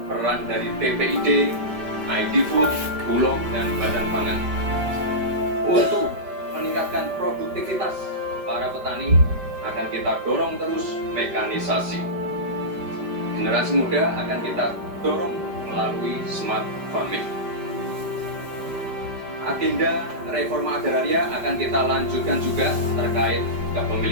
peran dari TPID, ID Food, Bulog, dan Badan Pangan. Untuk meningkatkan produktivitas para petani, akan kita dorong terus mekanisasi. Generasi muda akan kita dorong melalui smart farming. Agenda reforma agraria akan kita lanjutkan juga terkait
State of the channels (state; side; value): late; left; 5.1 ms